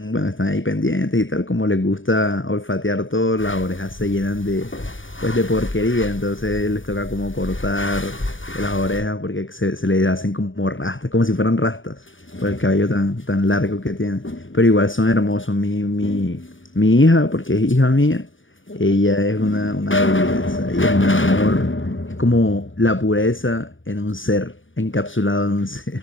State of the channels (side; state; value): right; late; 0.57 ms